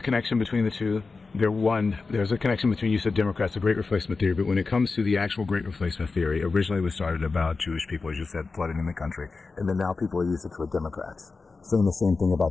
between the two? There's a connection between, you said Democrats, the Great Replacement theory, but when it comes to the actual Great Replacement theory, originally it was started about Jewish people, as you said, flooding in the country, and then now people are using it for Democrats, saying the same thing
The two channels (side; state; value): right; quieter; 4.2 dB